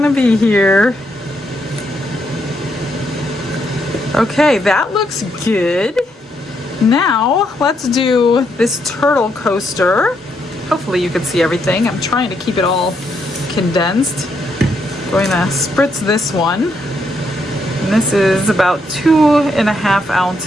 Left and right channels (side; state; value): both; normal; correlation 0.77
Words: be here. Okay, that looks good. Now, let's do this turtle coaster. Hopefully you can see everything. I'm trying to keep it all condensed. Going to spritz this one. And this is about 2.5